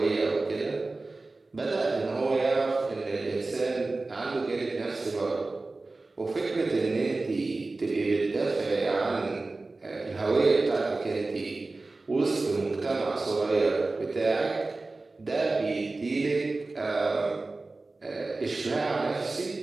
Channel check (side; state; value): left; quieter; 3.4 dB